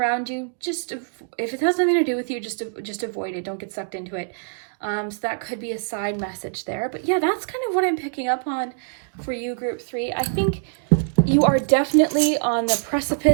you, just if it has nothing to do with you, just avoid it. Don't get sucked into it. So that could be a side message there. But yeah, that's kind of what I'm picking up on for you, Group 3. I think you are definitely on the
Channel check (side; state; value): left; silent; digital silence